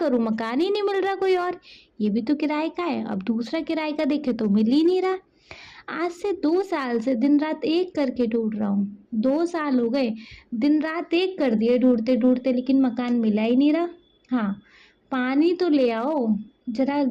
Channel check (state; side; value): identical; both; correlation 1.00